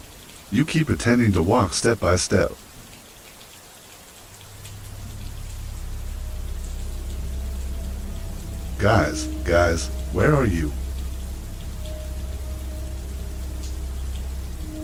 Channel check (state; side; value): identical; both; correlation 1.00